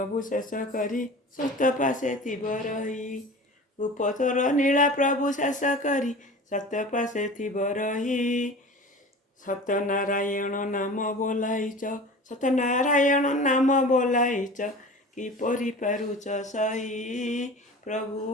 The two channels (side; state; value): both; normal; correlation 0.37